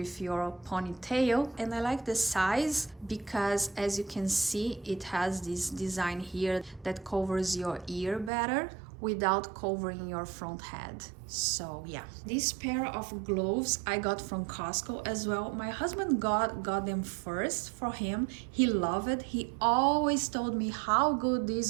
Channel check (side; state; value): left; drops out; at 8.3 s